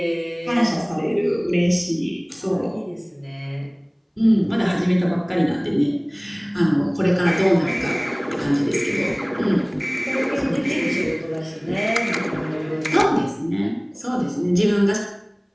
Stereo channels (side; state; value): both; identical; correlation 1.00